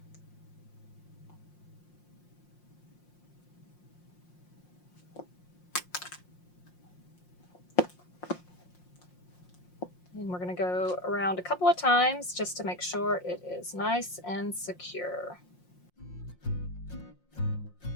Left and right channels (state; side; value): late; right; 5.6 ms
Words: And we're going to go around a couple of times just to make sure it is nice and secure.